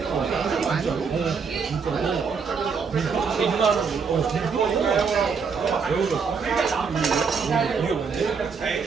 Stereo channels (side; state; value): left; quieter; 5.6 dB